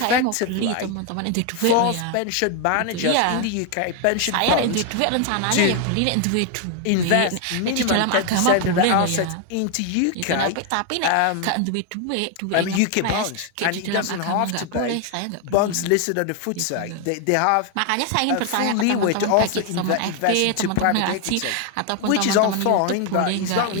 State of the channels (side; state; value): both; different; correlation 0.01